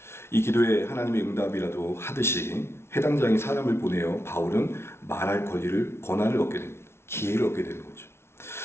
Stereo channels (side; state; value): right; late; 0.12 ms